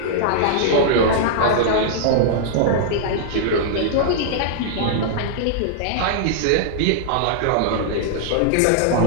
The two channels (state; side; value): different; both; correlation -0.01